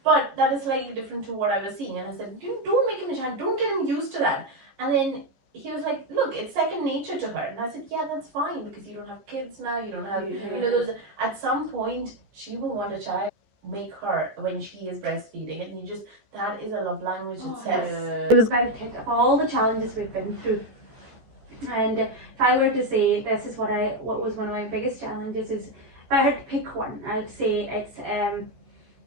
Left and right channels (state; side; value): late; left; 14 ms